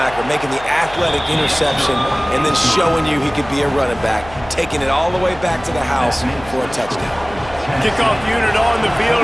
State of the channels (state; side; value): noise; left; hum, 18 dB below the sound